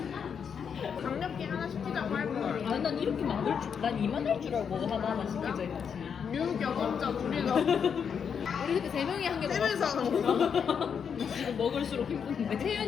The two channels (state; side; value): quieter; right; 7.0 dB